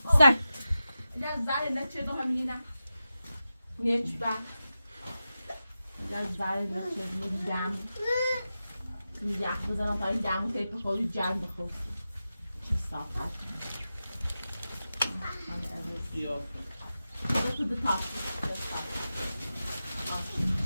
سر زاره نه چه دو همینی نه نیچ با زاره نه چه دو جامو یخ بزنم تا این جامو تله بخور جام بخور چه صاف بیا Go to the top.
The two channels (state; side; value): inverted; both; correlation -0.92